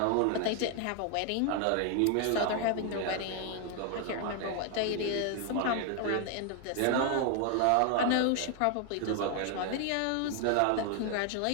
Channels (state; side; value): different; both; correlation 0.00